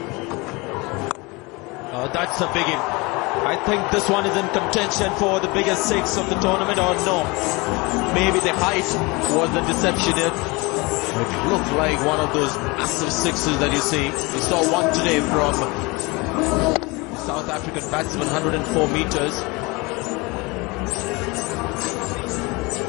That's a biggie. I think this one is in contention for the biggest 6 of the tournament, or no? Maybe the height was the deception here. It looked like one of those massive 6s that you see. We saw one today from South African batsman, 104 meters.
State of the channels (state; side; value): quieter; right; 25.6 dB